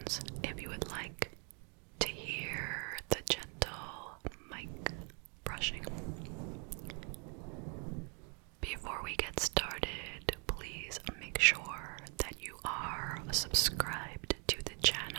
if you would like to hear the gentle mic brushing. Before we get started, please make sure that you are subscribed to the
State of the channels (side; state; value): left; quieter; 37.0 dB